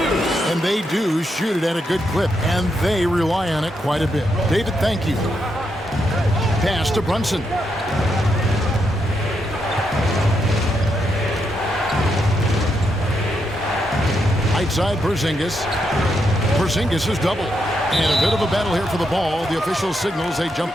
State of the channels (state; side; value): normal; both; correlation 0.81